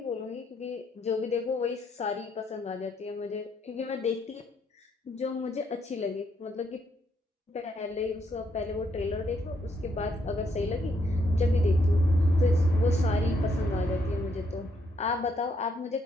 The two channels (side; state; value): both; normal; correlation 0.74